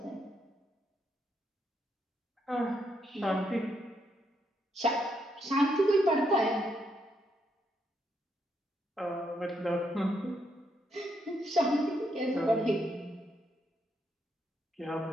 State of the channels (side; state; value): both; normal; correlation 0.77